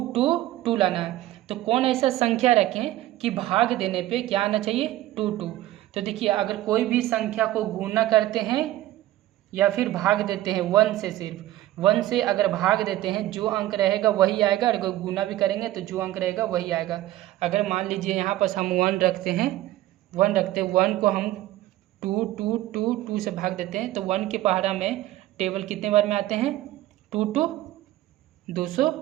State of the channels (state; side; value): quieter; left; 15.2 dB